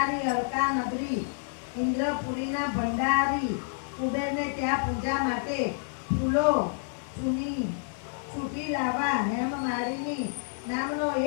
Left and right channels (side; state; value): right; silent; digital silence